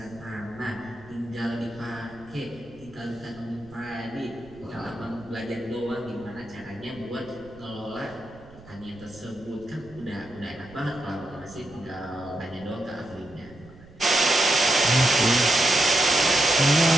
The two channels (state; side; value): noise; right; rumble, 22 dB below the sound